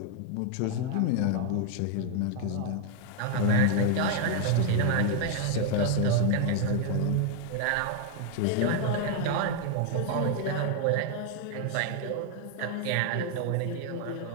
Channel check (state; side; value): different; both; correlation 0.00